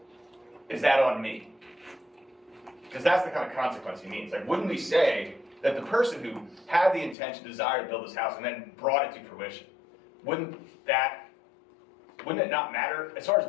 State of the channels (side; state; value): right; drops out; at 7.2 s